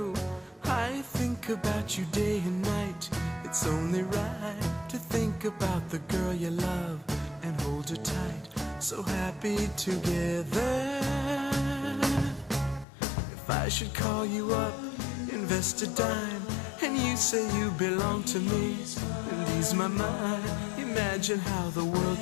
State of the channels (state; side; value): drops out; right; at 12.9 s